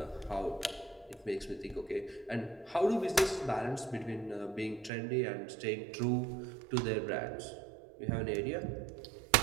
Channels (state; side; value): drops out; left; at 4.9 s